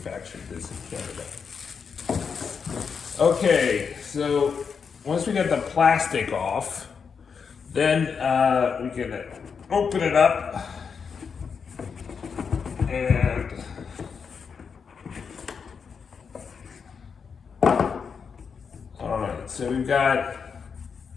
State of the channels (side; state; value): right; quieter; 6.1 dB